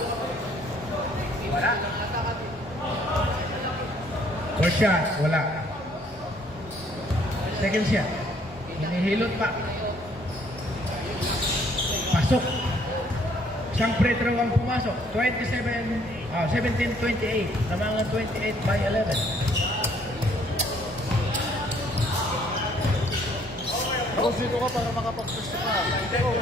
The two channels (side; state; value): both; normal; correlation 0.63